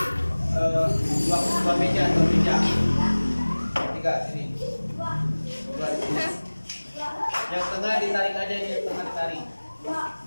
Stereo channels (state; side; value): inverted; both; correlation -1.00